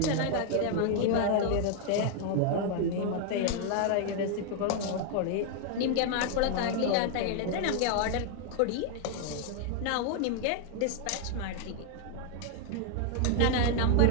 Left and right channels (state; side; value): different; both; correlation 0.00